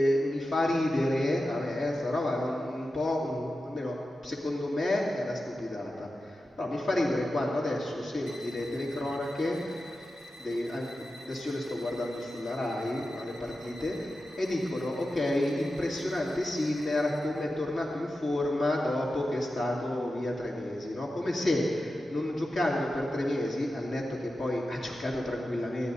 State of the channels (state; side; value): normal; both; correlation 0.92